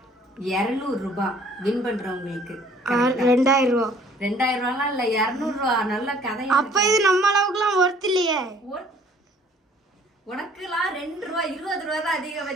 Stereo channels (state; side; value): normal; both; correlation 0.56